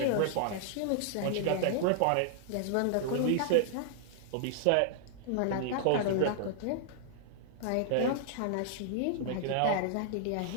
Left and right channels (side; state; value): both; different; correlation -0.01